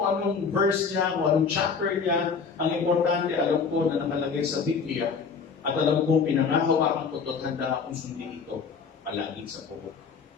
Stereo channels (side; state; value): right; quieter; 5.6 dB